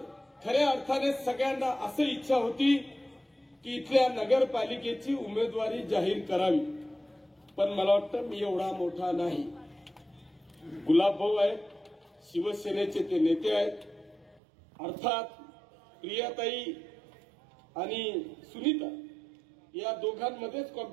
खऱ्या अर्थाने सगळ्यांना असं इच्छा होती की इथल्या नगरपालिकेची उमेदवारी जाहीर करावी. पण मला वाटतं मी एवढा मोठा नाही. गुलाबभाऊ आहेत, शिवसेनेचे ते नेते आहेत. अर्थात प्रियाताई आणि सुनीता या दोघांमध्येच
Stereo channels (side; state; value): left; drops out; at 14.4 s